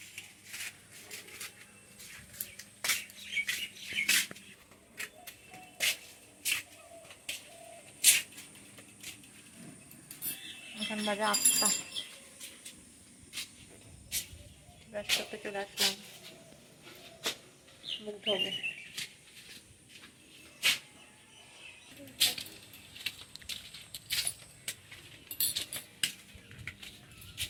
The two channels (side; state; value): both; identical; correlation 1.00